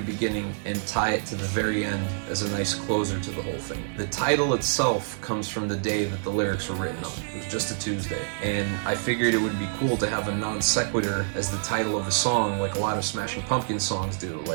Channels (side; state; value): left; silent; digital silence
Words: and tie it to the very end as a nice closer to the whole thing. The title itself comes from the day that the lyrics were written on. It was just a Tuesday, and I figured it would be cool to have a non sequitur as the title of a song, like a lot of Smashing Pumpkins songs do,